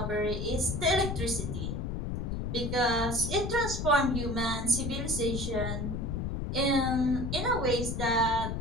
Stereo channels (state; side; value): noise; left; rumble, 3 dB below the sound